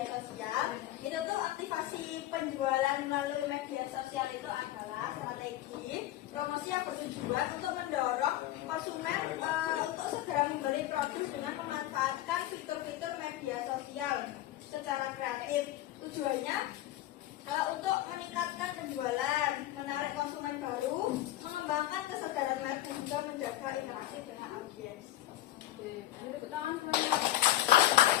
sosial itu tuh aktivasi penjualan melalui media sosial itu adalah strategi promosi yang bertujuan untuk mendorong konsumen untuk segera membeli produk dengan memanfaatkan fitur-fitur media sosial secara kreatif. Tujuannya untuk meningkatkan penjualan, menarik konsumen baru, mengembangkan kesadaran merek dan juga menjaga interaksi dengan audiens. Tepuk tangan semuanya.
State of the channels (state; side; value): quieter; right; 14.6 dB